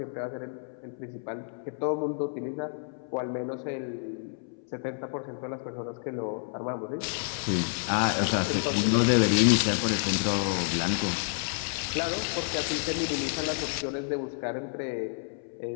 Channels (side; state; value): right; silent; 58 dB below the other